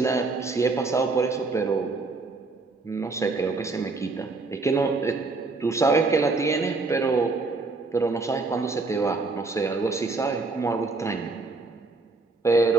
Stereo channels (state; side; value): quieter; left; 3.7 dB